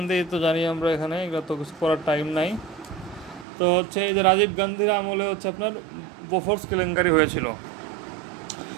তো জানি আমরা, এখানে এগুলো তো কিছু করার টাইম নাই। তো হচ্ছে এই যে রাজীব গান্ধীর আমলে হচ্ছে আপনার বোফোর্স কেলেঙ্কারি হয়েছিল,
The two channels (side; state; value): left; drops out; at 3.5 s